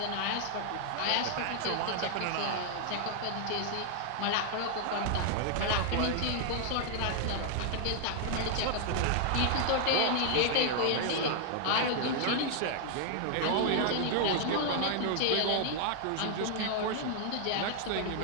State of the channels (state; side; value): different; both; correlation 0.00